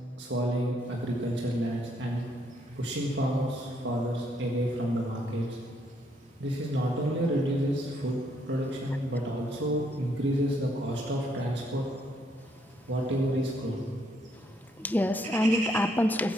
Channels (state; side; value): normal; both; correlation 0.72